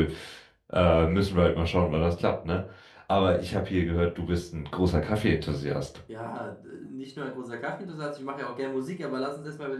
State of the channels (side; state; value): both; identical; correlation 1.00